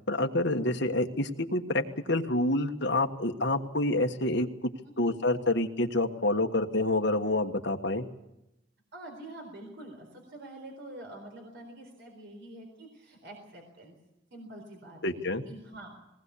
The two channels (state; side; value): normal; both; correlation 0.02